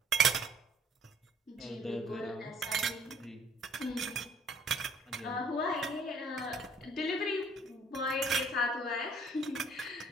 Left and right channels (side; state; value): both; normal; correlation 0.57